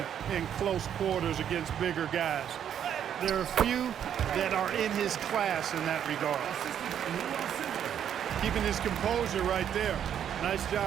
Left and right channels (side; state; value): left; quieter; 9.3 dB